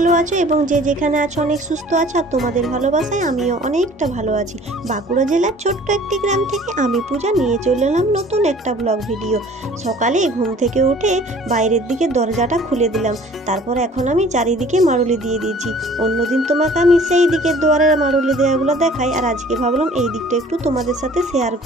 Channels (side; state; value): both; normal; correlation 0.50